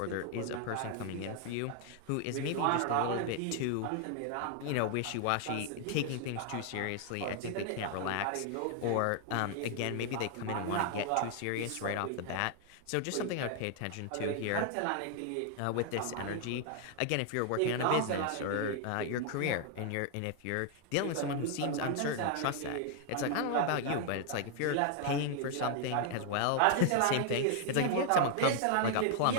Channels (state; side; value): different; both; correlation 0.00